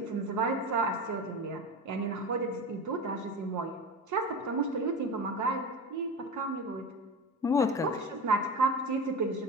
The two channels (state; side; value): normal; both; correlation 0.26